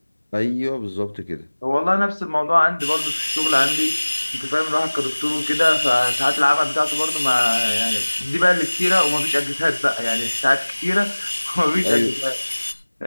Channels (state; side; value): inverted; both; correlation -1.00